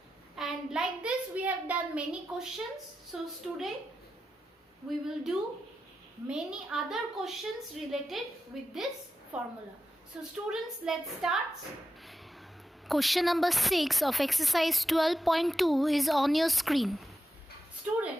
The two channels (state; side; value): normal; both; correlation 0.90